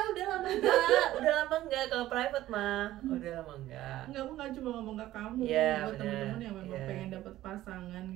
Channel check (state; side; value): quieter; left; 14.7 dB